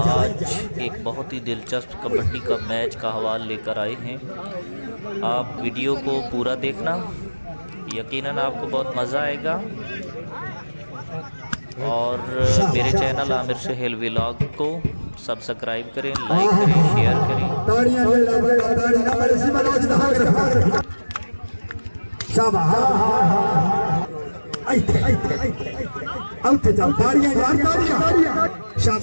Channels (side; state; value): both; inverted; correlation -1.00